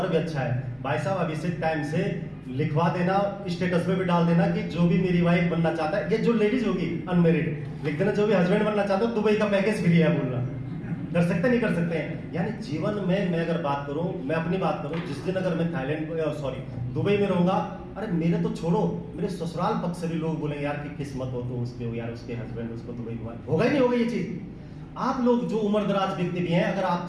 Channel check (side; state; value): both; identical; correlation 1.00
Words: भी अच्छा है। भाई साहब अभी से टाइम से लिखवा देना, स्टेटस में भी डाल देना कि जो भी मेरी वाइफ बनना चाहता है, ये जो लेडीज होगी अनमैरिड, लिख देना जो भी हस्बैंड बनना चाहता है दुबई का पैकेज फ्री है बोलना। कर सकते नहीं कर सकते हैं। यानी जीवन में मैं अगर बात करूं, मैं अपनी बात करूं, जिस दिन अगर मैं थाईलैंड दुबई में रहूंगा, अरे मेरे तो छोड़ो, मेरे ससुराल पक्ष से भी लोग बोलेंगे यार कि किस्मत हो तो उसके हो यार, उसके हस्बैंड उसको दुबई घुमा। होगा ही नहीं होगा ये चीज। आप लोग जो उम्र दराज व्यक्ति भी हैं, अगर आप